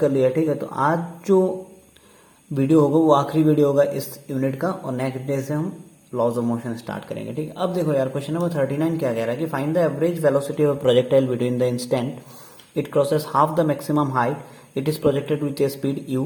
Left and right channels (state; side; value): identical; both; correlation 1.00